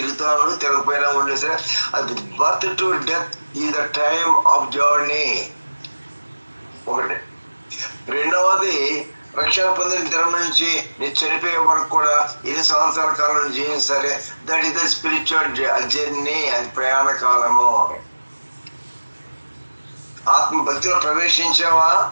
ఉండు, తిరగపోయినా ఉండు, సరే అది birth to death is the time of journey. ఒకటి. రెండవది, రక్షణ పొందిన దినం నుంచి నేను చనిపోయే వరకు కూడా 2 సంవత్సరాల కాలం జీవించాలి. That is the spiritual journey, అది ప్రయాణ కాలము. ఆత్మ భక్తిలో ప్రవేశించావా,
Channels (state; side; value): inverted; both; correlation -1.00